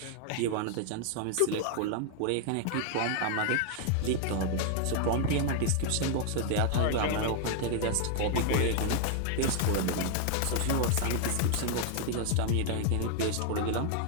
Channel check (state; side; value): different; both; correlation 0.00